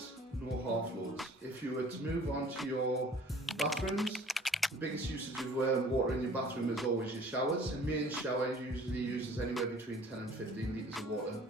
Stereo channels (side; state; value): both; normal; correlation 0.51